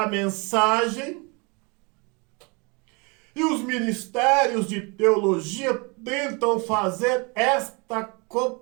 mensagem, e os ministérios de teologia tentam fazer esta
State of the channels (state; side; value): quieter; left; 29.9 dB